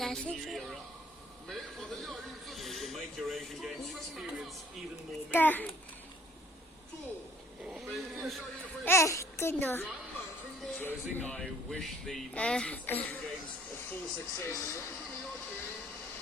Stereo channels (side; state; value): both; normal; correlation 0.58